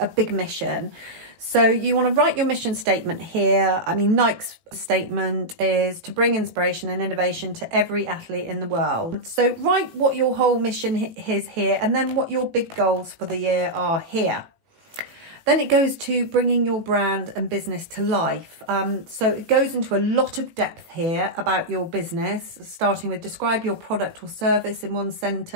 big mission. So you want to write your mission statement here. Nike's statement is to bring inspiration and innovation to every athlete in the world. So write what your whole mission is here, and then what your big goals for the year are here. Then it goes to bringing your brand and business to life. So it goes into a lot of depth here about your business, starting with describe your product or service in one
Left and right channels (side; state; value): left; late; 18 ms